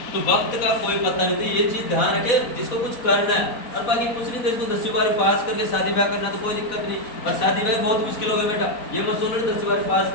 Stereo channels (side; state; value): right; late; 4.1 ms